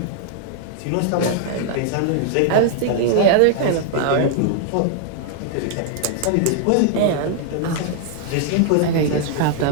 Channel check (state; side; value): different; both; correlation 0.00